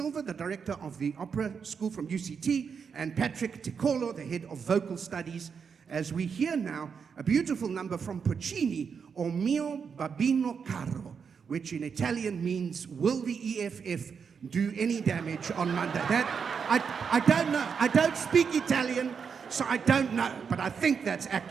the director of the Opera School from UCT, and Patrick Ticolo, the head of vocal studies, as we hear now a beautiful number from Puccini, O mio babino caro, which in Italian means, will the EFF do any damage on Monday? That, I don't know. I don't speak Italian, so I don't know, but I think that's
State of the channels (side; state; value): left; quieter; 6.3 dB